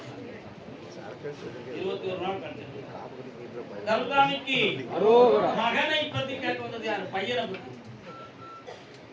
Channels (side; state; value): both; identical; correlation 1.00